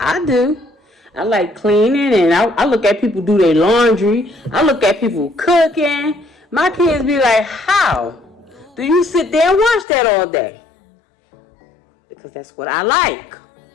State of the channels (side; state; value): right; drops out; at 9.9 s